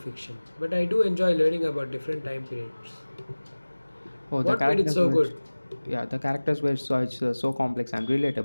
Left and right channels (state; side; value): inverted; both; correlation -1.00